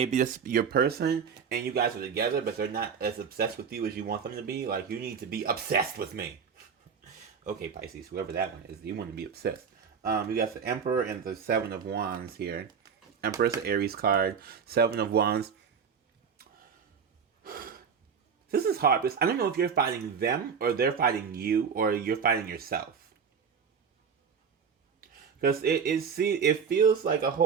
just your person and you guys are together, but they're not as obsessed with you as you want them to be. Like, you need to be obsessed with me. Okay, Pisces, whoever that one is, you want to be obsessed. You got the Emperor and the 7 of Wands here. Emperor's an Aries card. 7 of Wands. This is hard because I don't know if you're fighting them or they're fighting you or you're fighting yourself. Because it feels like a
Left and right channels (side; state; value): left; quieter; 6.5 dB